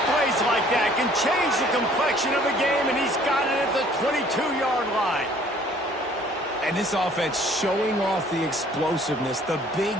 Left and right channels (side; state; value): both; normal; correlation 0.56